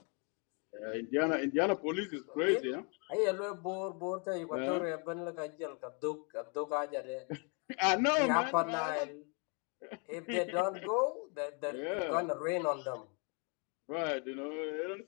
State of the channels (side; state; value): right; quieter; 36.5 dB